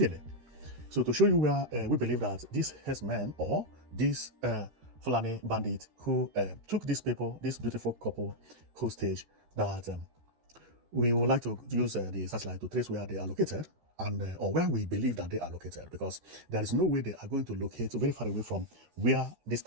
So to show you where we believe that these herdsmen or these Fulani bandit who took these people, this beautiful couple hostage, that we would like to use the satellite to trace where they are located and where we believe that they are located, because there is no way they are going to locate very far away from where this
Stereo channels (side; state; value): left; late; 13 ms